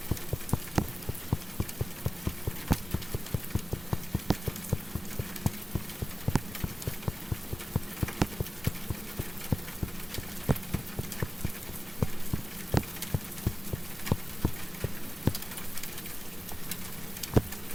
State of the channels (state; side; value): normal; both; correlation 0.95